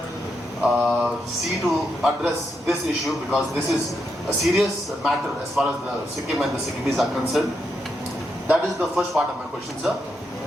see to address this issue, because this is a serious matter as far as the Sikkim and the Sikkimis are concerned? That is the first part of my question, sir.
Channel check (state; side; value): normal; both; correlation 0.82